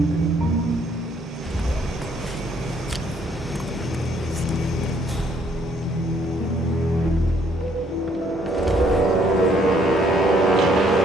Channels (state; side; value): normal; both; correlation 0.66